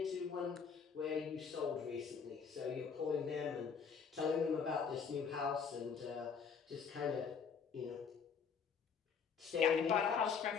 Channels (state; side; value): quieter; right; 6.2 dB